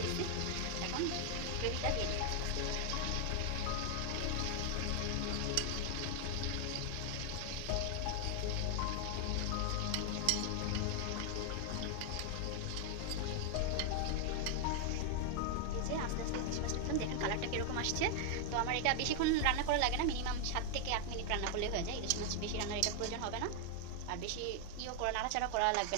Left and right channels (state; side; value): different; both; correlation 0.00